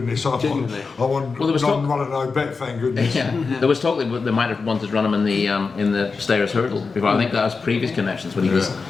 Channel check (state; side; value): quieter; right; 4.6 dB